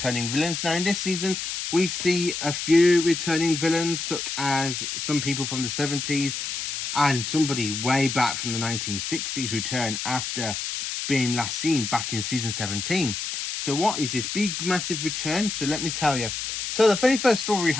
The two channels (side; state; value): left; noise; hiss, 4 dB below the sound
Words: villains. Now in this season we see a few returning villains, such as some people from the 70s and somebody way back from the 1960s return after being last seen back in season 17. So what is this big massive return? So let me tell you. So the very first story we